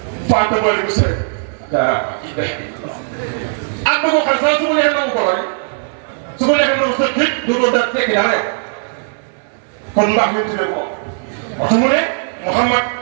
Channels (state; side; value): silent; left; digital silence